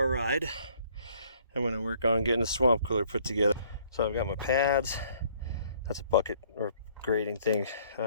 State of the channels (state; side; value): inverted; both; correlation -0.61